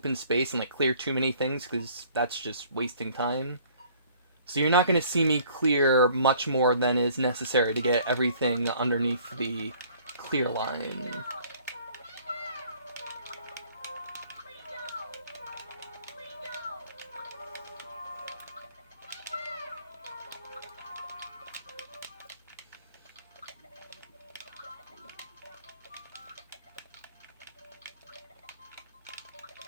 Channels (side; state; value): both; inverted; correlation -0.56